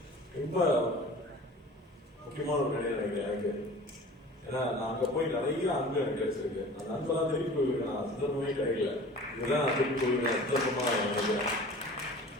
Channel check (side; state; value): both; normal; correlation 0.42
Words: ரொம்ப முக்கியமான ஒரு நிலையை நினைக்கிறேன் எனக்கு. ஏன்னா நான் அங்கே போய் நிறைய அன்பு எனக்கு கிடைச்சிருக்கு. அந்த அன்பெல்லாம் திருப்பி போயிருக்கேன். நான் சந்தர்ப்பமே கிடைக்கல. இதுதான் நான் திருப்பி போயிருக்கேன் சந்தர்ப்பமாக நினைக்கிறேன்.